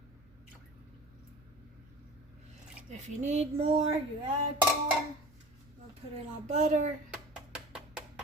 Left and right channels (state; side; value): noise; right; rumble, 29 dB below the sound